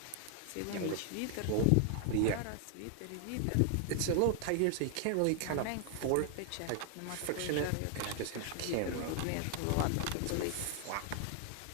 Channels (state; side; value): different; both; correlation 0.00